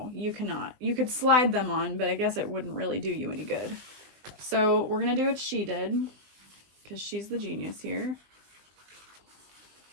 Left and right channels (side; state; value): left; late; 20 ms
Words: you cannot. You could slide them on, but I guess it wouldn't really do you any good. So we're gonna do what she did, because she's the genius here.